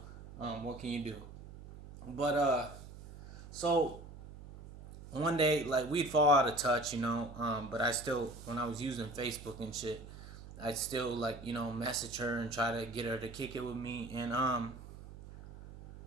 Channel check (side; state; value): right; noise; hum, 15 dB below the sound